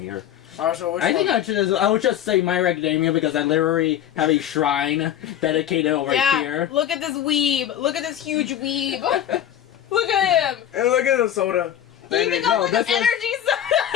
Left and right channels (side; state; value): right; quieter; 10.7 dB